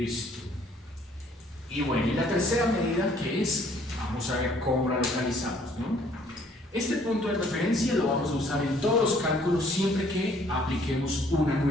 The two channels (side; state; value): both; normal; correlation 0.61